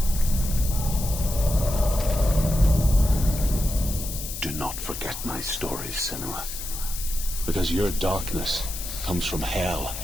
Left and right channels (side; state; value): left; noise; hiss, 8 dB below the sound